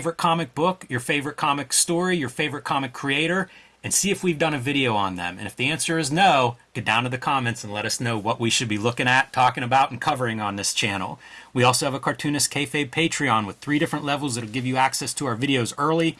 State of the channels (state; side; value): identical; both; correlation 1.00